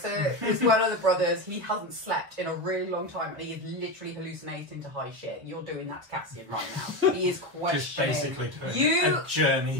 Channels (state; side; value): late; left; 1.2 ms